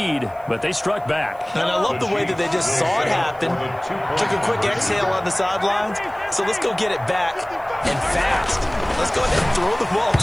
but they struck back. And I love the way that they just saw it happen. Took a quick exhale on the sidelines. So let's go get it back and fast. Let's go ahead and throw the ball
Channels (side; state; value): right; noise; hiss, 29 dB below the sound